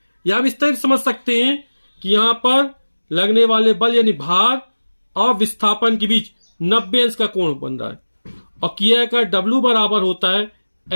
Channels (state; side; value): inverted; both; correlation -1.00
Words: या हम इस तरह समझ सकते हैं कि यहां पर लगने वाले बल यानी भार और विस्थापन के बीच 90 अंश का कोण बन रहा है। और किया का W बराबर होता है